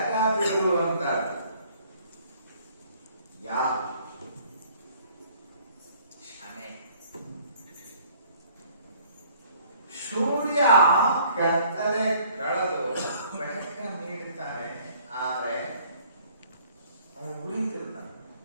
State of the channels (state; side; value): inverted; both; correlation -0.58